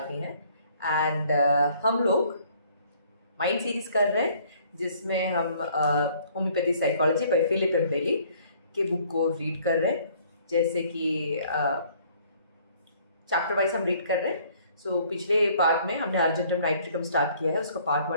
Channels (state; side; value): inverted; both; correlation -0.59